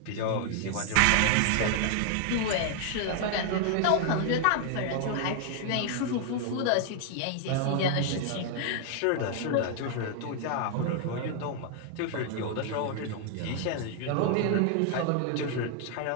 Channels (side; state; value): both; different; correlation 0.00